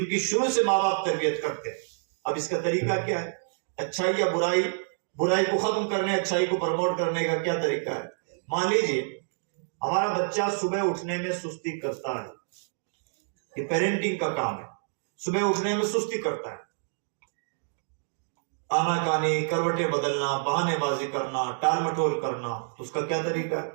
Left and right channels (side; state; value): left; silent; digital silence